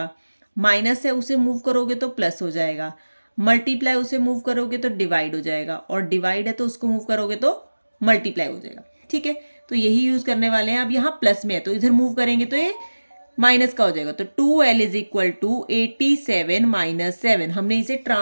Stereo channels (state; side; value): inverted; both; correlation -1.00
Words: माइनस है उसे मूव करोगे तो प्लस हो जाएगा, मल्टीप्लाई उसे मूव करोगे तो डिवाइड हो जाएगा, और डिवाइड है तो उसको मूव करोगे तो मल्टीप्लाई हो जाएगा, ठीक है। तो यही यूज करने वाले हैं। अब यहाँ प्लस में है तो इधर मूव करेंगे तो ये माइनस का हो जाएगा। तो 2L इज इक्वल टू 87 - 7। हमने इसे